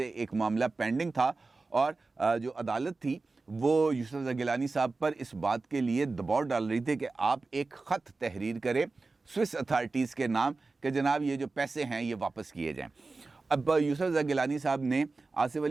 ایک معاملہ پینڈنگ تھا، اور جو عدالت تھی وہ یوسف رضا گیلانی صاحب پر اس بات کے لیے دباؤ ڈال رہی تھی کہ آپ ایک خط تحریر کریں سوئس اتھارٹیز کے نام کہ جناب یہ جو پیسے ہیں یہ واپس کیے جائیں۔ اب یوسف رضا گیلانی صاحب نے آصف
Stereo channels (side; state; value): left; quieter; 3.7 dB